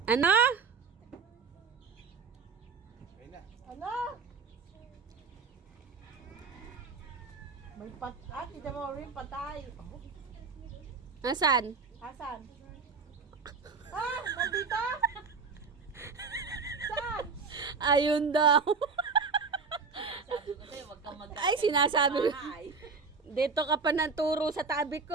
Ano? Ano? May Tita Maureen, patay. Nasaan? Asan? Ah, nandito? Saan? Ayun daw. Sabi ko sa'yo, huwag kang magkakain. Ay, sinasabi ko. sa bahay. Dito ka pa ng turo sa tabi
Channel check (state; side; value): quieter; left; 5.0 dB